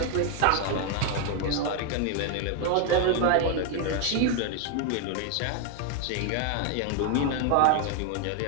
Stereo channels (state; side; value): different; both; correlation 0.01